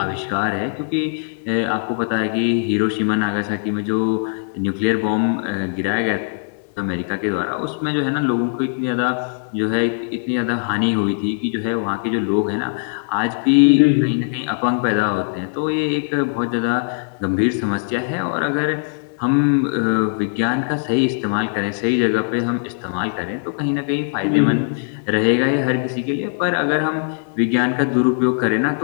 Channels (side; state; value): right; silent; digital silence